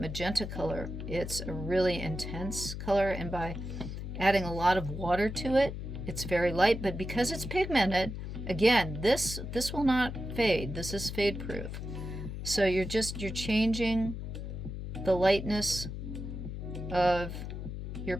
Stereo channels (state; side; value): noise; left; hum, 7 dB below the sound